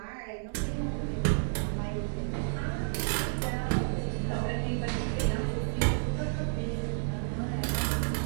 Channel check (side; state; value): left; silent; digital silence